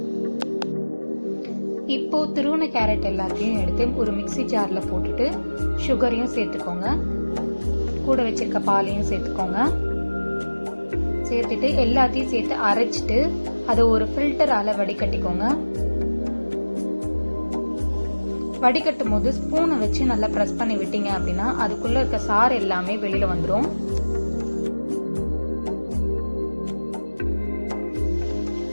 இப்போ துருவன கேரட் எல்லாத்தையும் எடுத்து ஒரு மிக்ஸி ஜார்ல போட்டுட்டு சுகரையும் சேர்த்துக்கோங்க. கூட வச்சிருக்க பாலையும் சேர்த்துக்கோங்க. சேர்த்துட்டு எல்லாத்தையும் சேர்த்து அரைச்சிட்டு அதை ஒரு ஃபில்டரால வடிகட்டிக்கோங்க. வடிகட்டும் போது ஸ்பூனை வச்சு நல்லா பிரஸ் பண்ணி விட்டீங்க அப்படின்னா அதுக்குள்ள இருக்க சாறு எல்லாமே வெளியில வந்துடும்.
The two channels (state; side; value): inverted; both; correlation -1.00